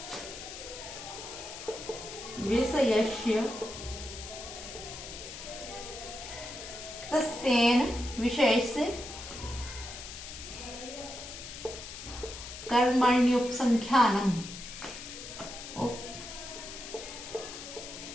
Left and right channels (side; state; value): left; noise; hiss, 11 dB below the sound